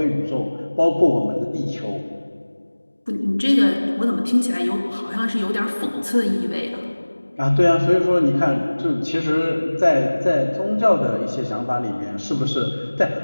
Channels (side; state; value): both; inverted; correlation -1.00